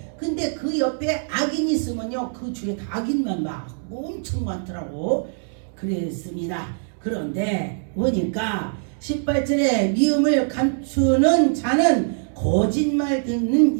근데 그 옆에 악인이 있으면요, 그 주위에 다 악인만 막 엄청 많더라고. 그랬습니다. 그런데 보니까 18절에 미움을 감추는 자는 거짓말 듣는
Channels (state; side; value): silent; left; digital silence